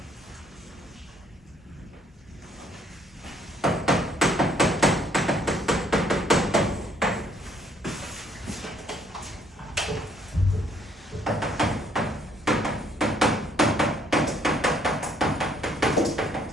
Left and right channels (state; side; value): normal; both; correlation 0.65